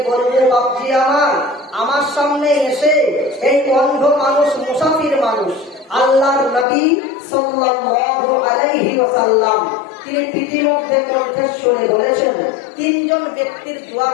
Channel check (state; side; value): drops out; right; at 6.7 s